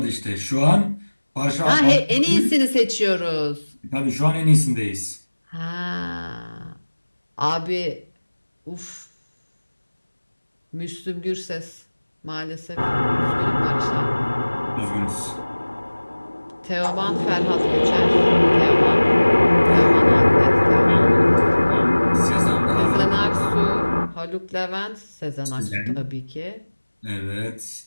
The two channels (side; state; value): both; inverted; correlation -1.00